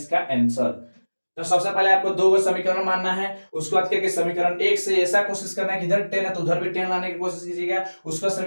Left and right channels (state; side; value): inverted; both; correlation -1.00